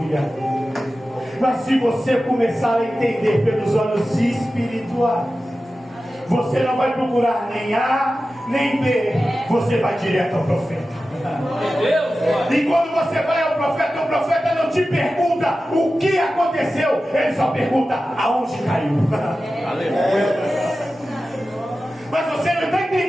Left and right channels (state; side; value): normal; both; correlation 0.94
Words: Mas se você começar a entender pelos olhos espirituais, você não vai procurar nem A nem B, você vai direto ao profeta. E quando você vai ao profeta, o profeta não te pergunta o que aconteceu, ele só pergunta aonde caiu. Aleluia. Mas você não está